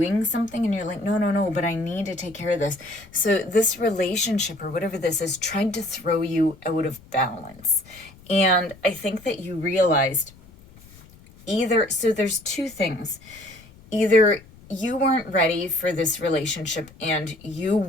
something, and you're like, no, but I need to take care of this. So this relationship or whatever this is tried to throw you out of balance. And I think that you realized so there's two things. Either you weren't ready for this relationship and you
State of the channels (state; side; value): noise; left; rumble, 23 dB below the sound